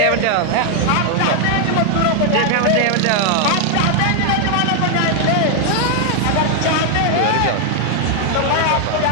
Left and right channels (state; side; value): different; both; correlation 0.00